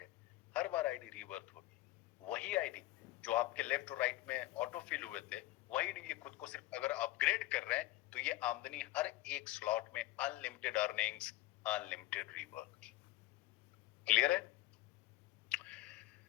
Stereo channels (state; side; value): quieter; right; 17.3 dB